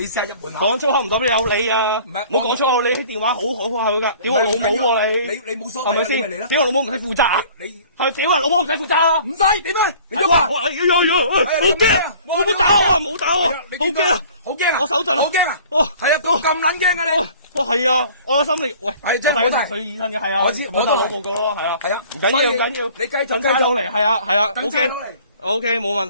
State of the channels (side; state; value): both; inverted; correlation -0.50